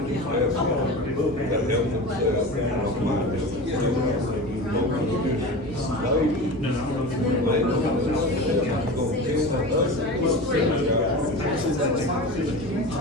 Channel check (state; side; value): normal; both; correlation 0.30